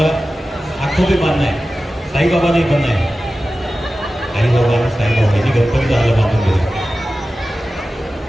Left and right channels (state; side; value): normal; both; correlation 0.95